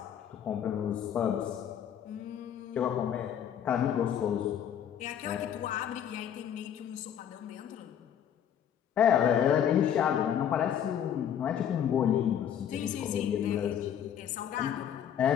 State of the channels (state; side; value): quieter; right; 9.3 dB